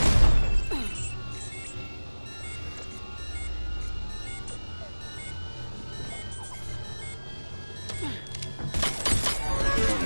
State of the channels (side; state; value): both; inverted; correlation -1.00